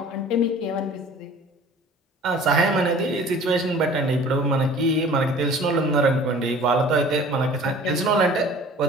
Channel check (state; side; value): normal; both; correlation 0.46